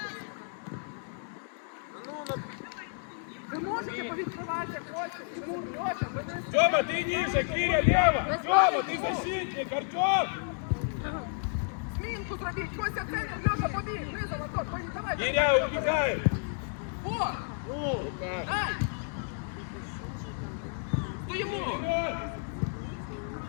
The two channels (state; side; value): silent; right; 57 dB below the other